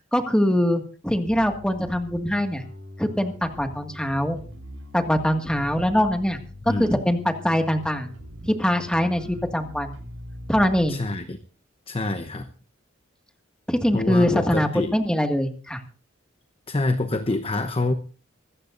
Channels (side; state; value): both; normal; correlation 0.90